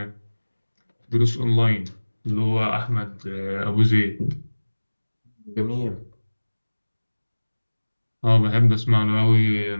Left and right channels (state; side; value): inverted; both; correlation -1.00